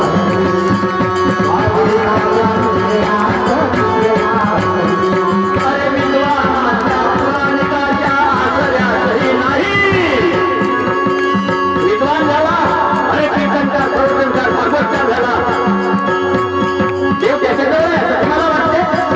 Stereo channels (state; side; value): identical; both; correlation 1.00